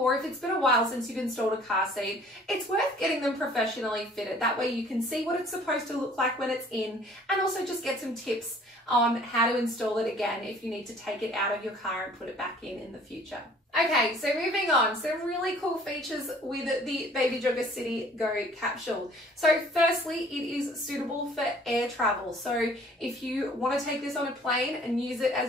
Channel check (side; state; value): both; normal; correlation 0.54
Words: if it's been a while since you've installed a car seat, it's worth getting them professionally fitted. That way you can see what it's supposed to look like when it's in, and also just get some tips on how to install it again if you need to take it out of your car and put it back in the future. Okay, so moving on, some really cool features with the Baby Jogger City Go capsule. So firstly, it is suitable for air travel. So if you want to take this on a plane and use it